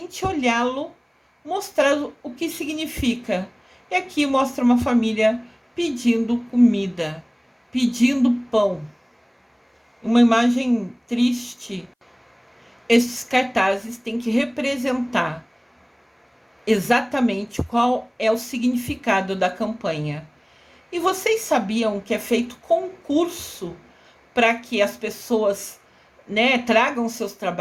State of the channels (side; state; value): both; identical; correlation 1.00